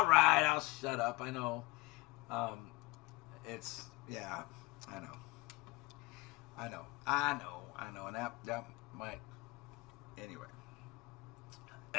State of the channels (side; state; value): right; quieter; 22.5 dB